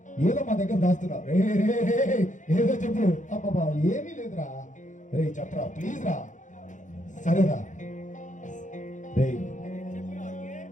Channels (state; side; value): late; right; 0.36 ms